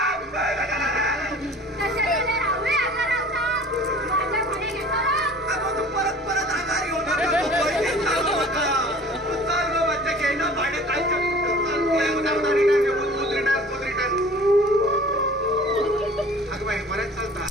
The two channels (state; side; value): normal; both; correlation 0.46